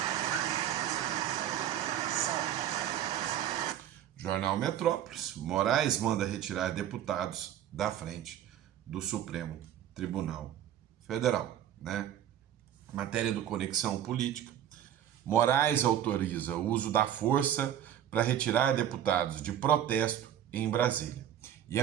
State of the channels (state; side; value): quieter; left; 10.7 dB